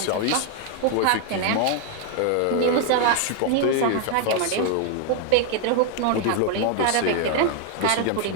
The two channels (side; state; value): both; different; correlation 0.00